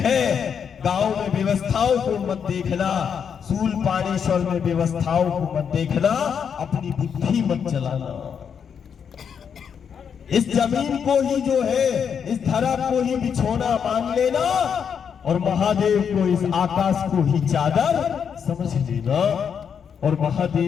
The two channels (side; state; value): right; quieter; 7.3 dB